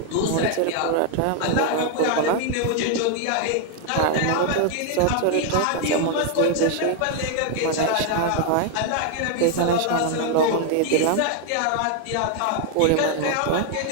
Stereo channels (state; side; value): different; both; correlation 0.00